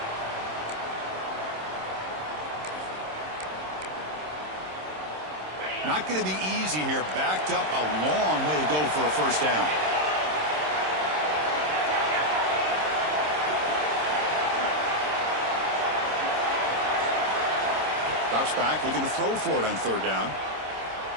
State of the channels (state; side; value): late; left; 26 ms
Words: Not going to be easy here. Backed up a long way to go for a first down. Drops back, looking to throw for it on third down.